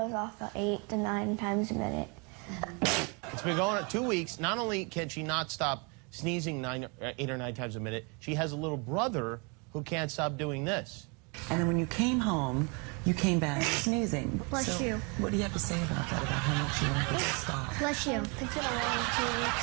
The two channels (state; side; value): quieter; left; 32.4 dB